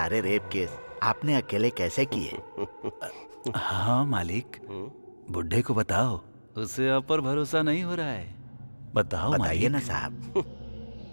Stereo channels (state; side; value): inverted; both; correlation -1.00